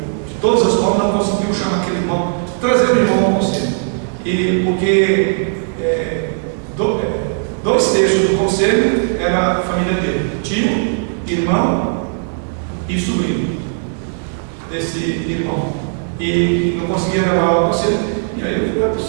de todas as formas, não conseguiu chamar aquele irmão, trazer o irmão ao conselho. E porque dois terços do conselho era a família dele, tio, irmão e sobrinho desse irmão. E não conseguia levar ao conselho. E aí eu falei,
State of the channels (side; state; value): left; silent; digital silence